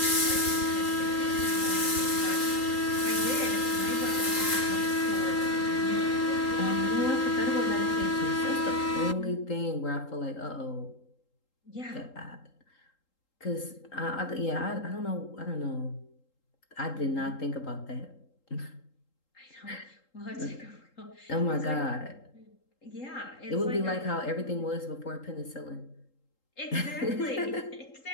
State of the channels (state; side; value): late; right; 3.8 ms